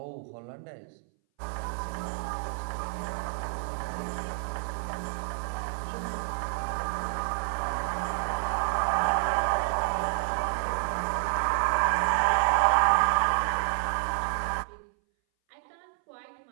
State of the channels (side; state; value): left; silent; 58 dB below the other